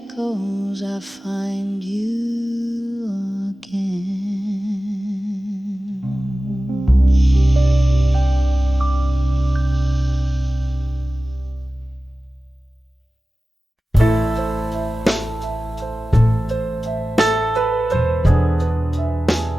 I find you again.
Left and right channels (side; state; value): both; normal; correlation 0.96